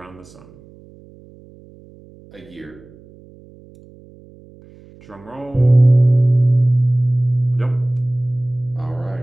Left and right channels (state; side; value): noise; right; hum, 24 dB below the sound